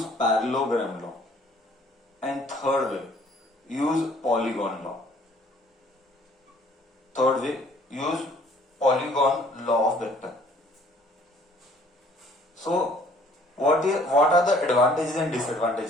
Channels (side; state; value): both; normal; correlation 0.57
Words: parallelogram law. And third way, use polygon law. Third way, use polygon law of vector. So, what are the advantages and